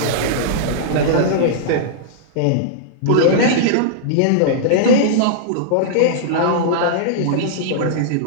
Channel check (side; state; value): both; different; correlation -0.02